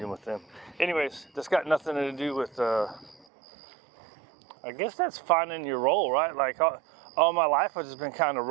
with them. Anyways, that's got nothing to do with, I guess that's finding your role, right? Like all my life, I've just been kind of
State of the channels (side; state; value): left; drops out; at 3.2 s